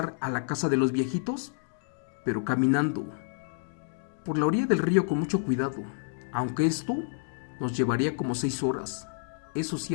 a la casa de los viejitos, pero caminando por la orilla del río con mucho cuidado, aunque esto nos llevaría como 6 horas. Eso sí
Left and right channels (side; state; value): right; silent; digital silence